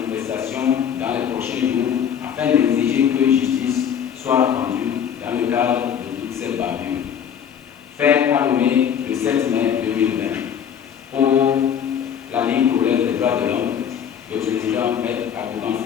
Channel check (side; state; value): right; quieter; 8.5 dB